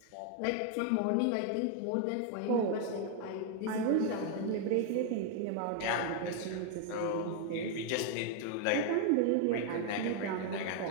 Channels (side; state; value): both; different; correlation 0.00